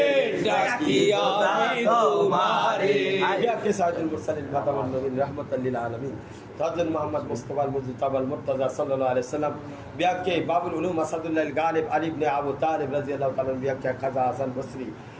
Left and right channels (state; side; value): identical; both; correlation 1.00